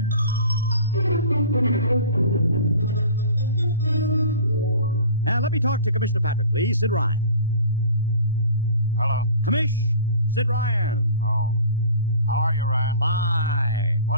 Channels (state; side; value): inverted; both; correlation -0.42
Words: Let me talk to Commissioner Patrick, please. Sid Ryan. Hello. Commish, Sid Ryan. Oh. How are you, Ryan? Fine.